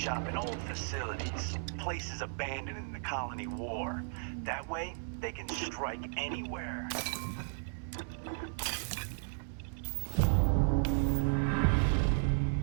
in old facilities, places abandoned in the colony war. That way, they can strike anywhere.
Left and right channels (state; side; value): silent; left; 55 dB below the other